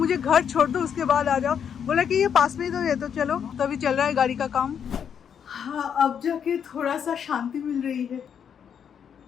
घर छोड़ दो, उसके बाद आ जाओ। बोला कि ये पास में ही तो है, तो चलो। तो अभी चल रहा है गाड़ी का काम। हाँ, अब जाके थोड़ा सा शांति मिल रही है।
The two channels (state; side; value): quieter; right; 7.9 dB